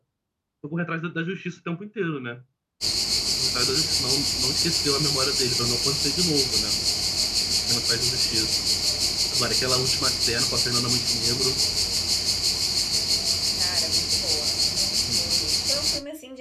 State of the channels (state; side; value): identical; both; correlation 1.00